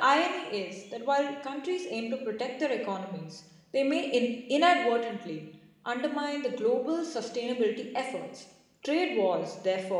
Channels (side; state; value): both; identical; correlation 1.00